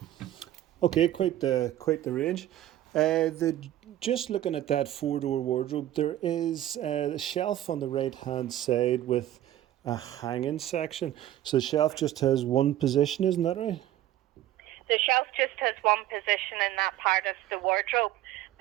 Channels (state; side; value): quieter; left; 13.2 dB